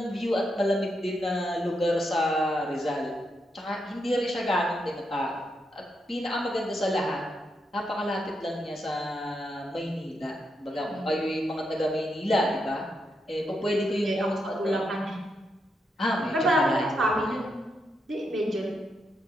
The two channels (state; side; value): normal; both; correlation 0.82